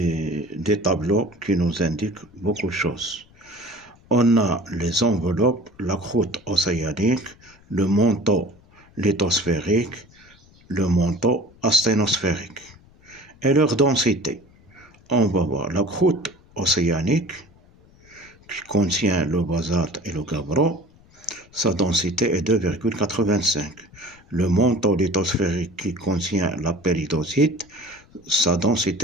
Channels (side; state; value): left; noise; rumble, 27 dB below the sound